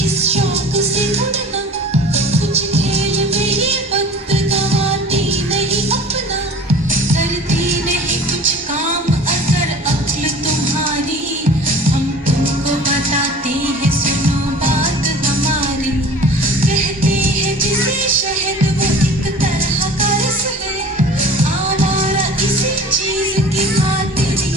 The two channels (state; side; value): normal; both; correlation 0.43